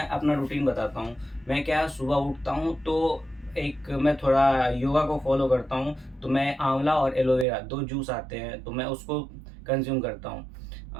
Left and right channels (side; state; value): left; drops out; at 7.5 s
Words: अपना रूटीन बताता हूँ, मैं क्या सुबह उठता हूँ तो एक मैं थोड़ा योगा को फॉलो करता हूँ, तो मैं आंवला और एलोवेरा 2 जूस आते हैं तो मैं उसको कंज्यूम करता